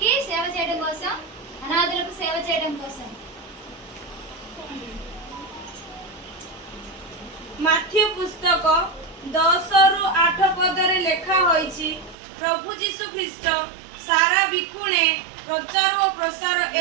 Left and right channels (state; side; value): drops out; left; at 12.2 s